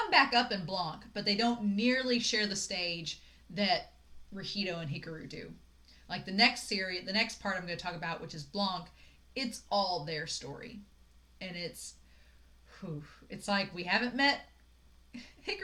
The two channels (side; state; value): both; identical; correlation 1.00